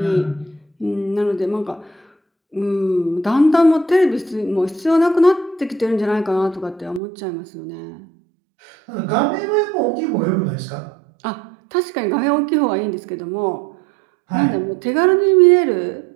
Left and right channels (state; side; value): drops out; left; at 7.0 s